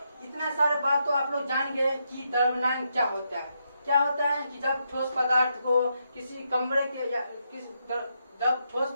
इतना सारे बात तो आप लोग जान गए कि द्रव्यनांक क्या होता है। क्या होता है कि जब ठोस पदार्थ को किसी कमरे के या जब ठोस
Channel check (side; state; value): both; inverted; correlation -0.81